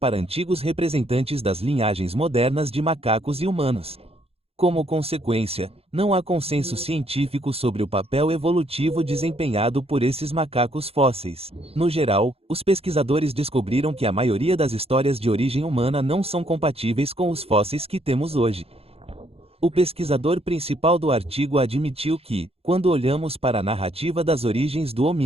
antigos representantes das linhagens modernas de macacos e humanos. Como consequência, não há consenso científico sobre o papel evolutivo desempenhado por esses macacos fósseis. No geral, os pesquisadores descobriram que a maioria das histórias de origem humana não são compatíveis com os fósseis que temos hoje. O pesquisador principal do artigo admitiu que, quando olhamos para a narrativa das origens do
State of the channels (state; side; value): late; left; 0.29 ms